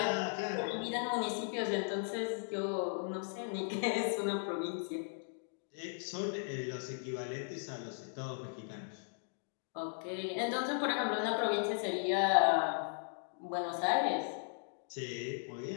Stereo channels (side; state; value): right; silent; digital silence